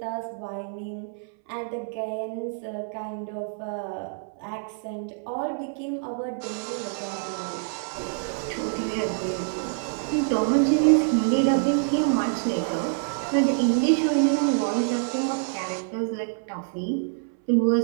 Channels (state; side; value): silent; left; 61 dB below the other